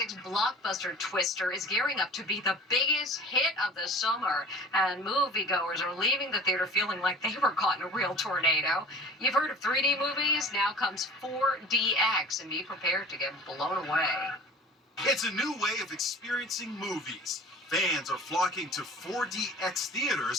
blockbuster Twister is gearing up to be the biggest hit of the summer, and moviegoers are leaving the theater feeling like they were caught in a real tornado. You've heard of 3D movies? Now comes 4DX, and be prepared to get blown away. It's a new way of experiencing movies. Fans are flocking to 4DX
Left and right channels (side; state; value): both; normal; correlation 0.42